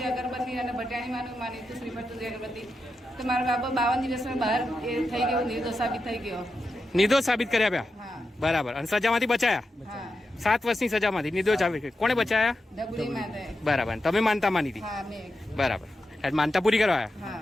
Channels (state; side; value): normal; both; correlation 0.89